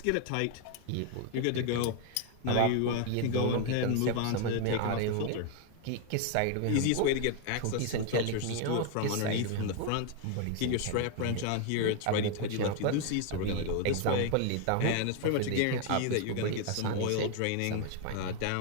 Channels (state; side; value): different; both; correlation 0.01